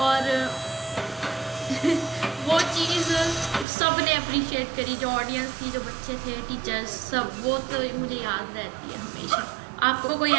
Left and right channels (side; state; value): left; drops out; at 3.7 s